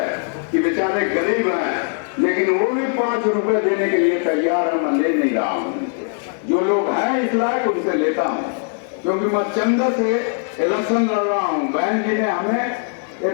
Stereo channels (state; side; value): silent; right; 56 dB below the other